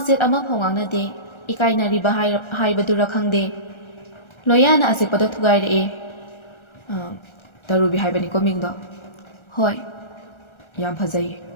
ꯑꯃꯐꯥꯎ ꯉꯥꯡꯅꯗꯦ, ꯏꯀꯥꯏꯅꯔꯤꯕ ꯍꯥꯏꯕꯗꯨꯔ ꯈꯪꯗꯦ꯫ ꯂꯣꯌꯥꯅ ꯑꯆꯤꯛꯄꯗꯣ ꯊꯨꯒꯥꯏꯔꯛꯏ꯫ ꯇꯔꯨꯕꯤ ꯍꯥꯏꯕꯅꯤꯀꯣ ꯃꯤꯡꯗꯣ? ꯍꯣꯏ, ꯌꯥꯝ ꯐꯖꯩꯌꯦ,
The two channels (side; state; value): right; late; 1.3 ms